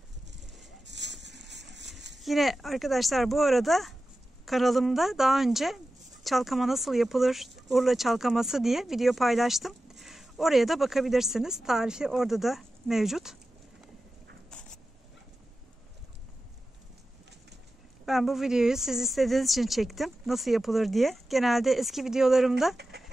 Yine arkadaşlar bu arada kanalımda daha önce çalkama nasıl yapılır, Urla çalkaması diye video paylaştım. Oraya da bakabilirsiniz. Tarifi orada da mevcut. Ben bu videoyu siz istediğiniz için çektim. Nasıl yapılır diye. Genelde eski videolarımda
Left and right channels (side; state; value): both; normal; correlation 0.94